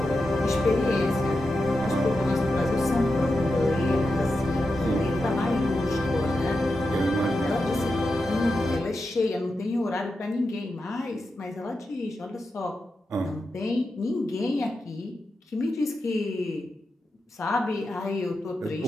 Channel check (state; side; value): normal; both; correlation 0.89